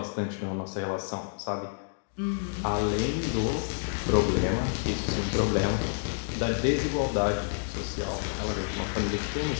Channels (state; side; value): silent; right; digital silence